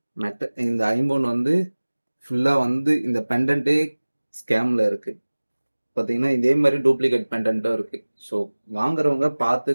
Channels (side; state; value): both; inverted; correlation -1.00